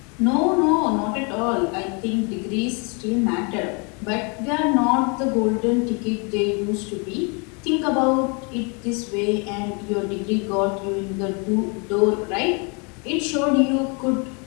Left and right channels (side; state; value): right; quieter; 33.7 dB